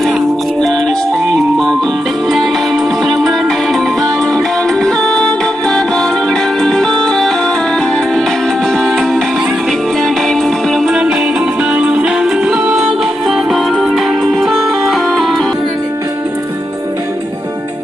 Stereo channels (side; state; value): both; normal; correlation 0.86